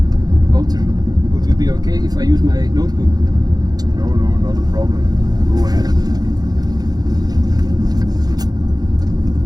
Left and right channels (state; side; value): late; left; 0.19 ms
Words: Wouter, would it be okay if I use my notebook? No, not a problem. Go ahead.